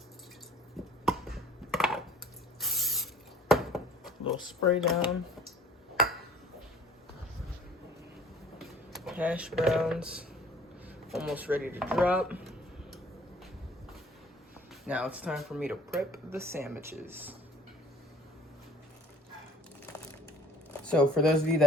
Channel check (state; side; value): normal; both; correlation 0.51